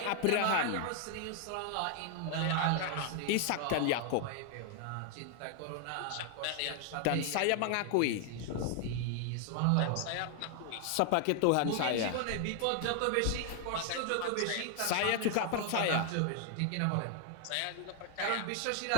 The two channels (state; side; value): different; both; correlation 0.00